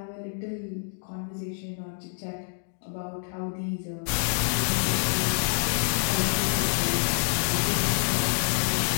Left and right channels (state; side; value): silent; right; digital silence